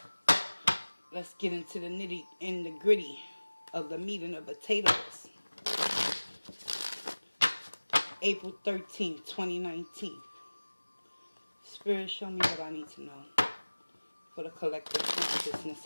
let's get into the nitty and the gritty of the meat and the potatoes. April 13th, 2019. Spirit, show me what I need to know for the collective consciousness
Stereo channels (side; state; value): both; inverted; correlation -1.00